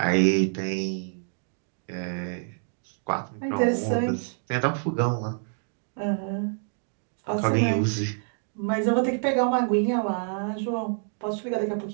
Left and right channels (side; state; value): left; silent; 60 dB below the other